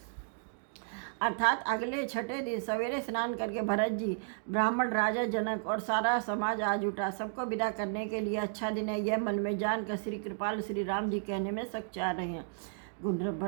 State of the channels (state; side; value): silent; left; digital silence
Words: अर्थात अगले छठे दिन सवेरे स्नान करके भरत जी, ब्राह्मण राजा जनक और सारा समाज आज उठा। सबको विदा करने के लिए अच्छा दिन है यह मन में जानकर श्री कृपाल श्री राम जी कहने में सकुचा रहे हैं। गुंड्र